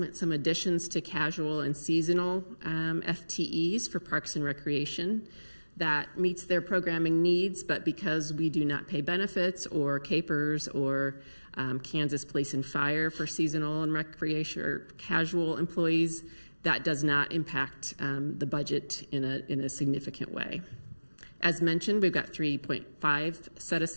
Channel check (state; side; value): inverted; both; correlation -1.00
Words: some additions to casual and seasonal FTEs for Parks and Recreation. That meets their programming needs, but because we do not pay benefits or capers or Kansas Police and Fire for seasonal and recreation or casual employees, that does not impact the budget in a significant way. As mentioned, we've got 3.5 set